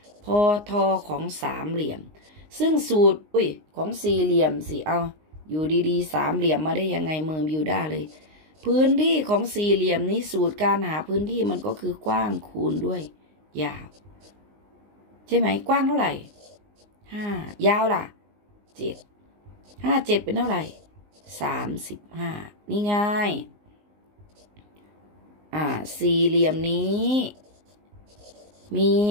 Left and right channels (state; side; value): late; left; 19 ms